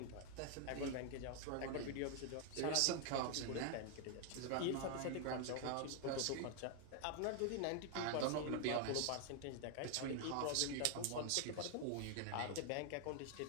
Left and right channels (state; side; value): different; both; correlation 0.00